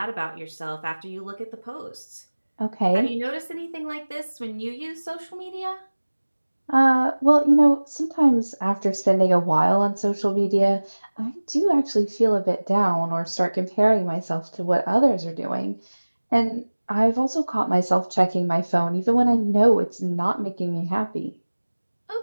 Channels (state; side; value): inverted; both; correlation -1.00